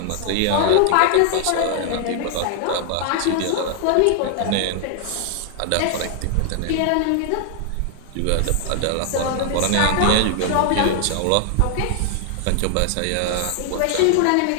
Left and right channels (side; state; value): both; different; correlation 0.00